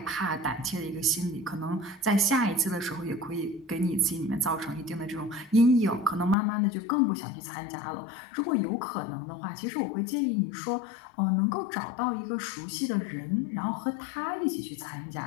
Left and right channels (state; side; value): drops out; right; at 6.4 s